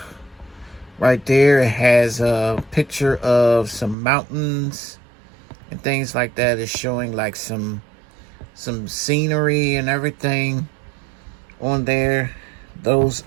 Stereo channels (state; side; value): drops out; left; at 4.0 s